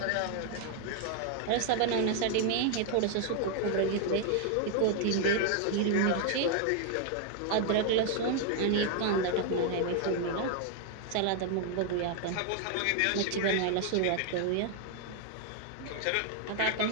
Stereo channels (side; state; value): both; different; correlation 0.00